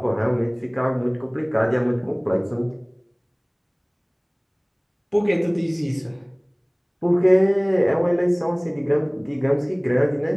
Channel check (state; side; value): identical; both; correlation 1.00